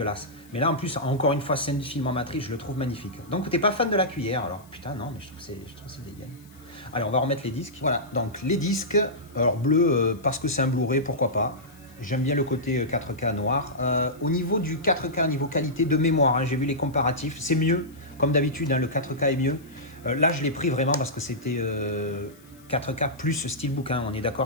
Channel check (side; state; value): left; noise; hiss, 27 dB below the sound